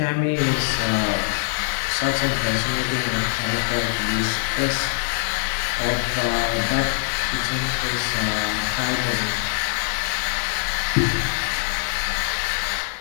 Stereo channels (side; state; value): right; silent; digital silence